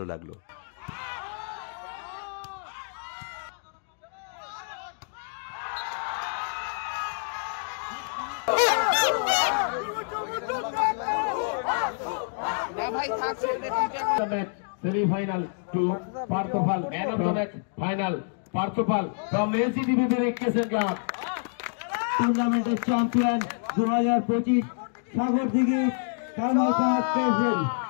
লাগলো। না ভাই থাক ছেড়ে দে তুই এখন semifinal two Parthapal man of the match final Parthapal from ACDBB cricket club টুর্নামেন্টের চ্যাম্পিয়ন 2025 সাগরদিঘি কামারপাড় প্রেসিডেন্ট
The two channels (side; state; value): right; silent; digital silence